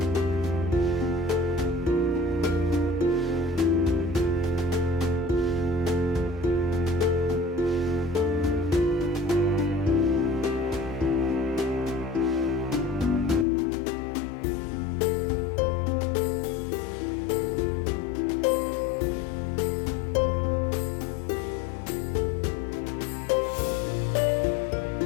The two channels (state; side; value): drops out; right; at 13.5 s